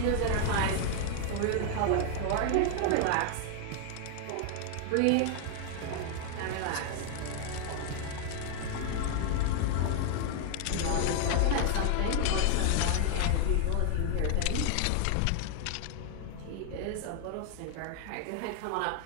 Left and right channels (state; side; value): different; both; correlation 0.00